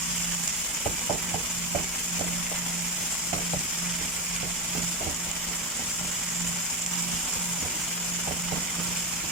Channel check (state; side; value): normal; both; correlation 0.13